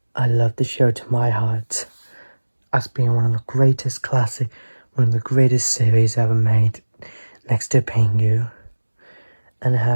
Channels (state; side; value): inverted; both; correlation -1.00